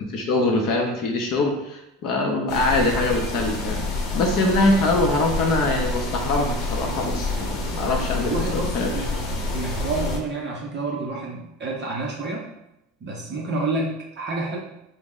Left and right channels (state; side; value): normal; both; correlation 0.34